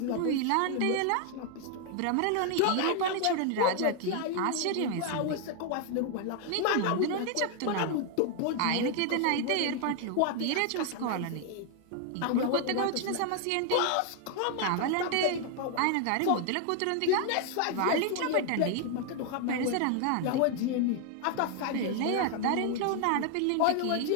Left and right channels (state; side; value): different; both; correlation 0.00